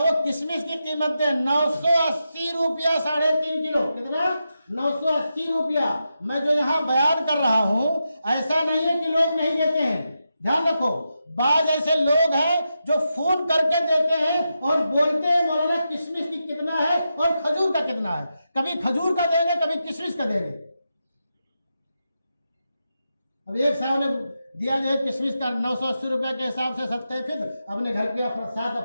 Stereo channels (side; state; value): both; inverted; correlation -0.87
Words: किशमिश की कीमत है 980 रुपया 3.5 किलो। कितना? 980 रुपया। मैं जो यहाँ बयान कर रहा हूं, ऐसा नहीं है कि लोग नहीं देते हैं, ध्यान रखो, बाज ऐसे लोग हैं जो फोन करके देते हैं और बोलते हैं मौलाना किशमिश की कितना है और खजूर का कितना है। कभी खजूर का देंगे, कभी किशमिश का देंगे। अब एक साहब ने दिया जो है किशमिश का 980 रुपए के हिसाब से सत्ते फिर अपने घर के 7